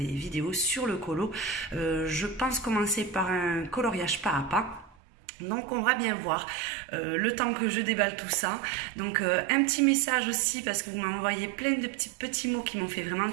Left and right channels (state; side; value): drops out; left; at 5.0 s